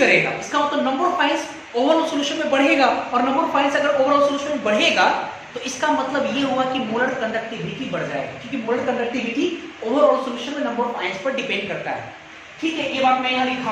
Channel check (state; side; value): identical; both; correlation 1.00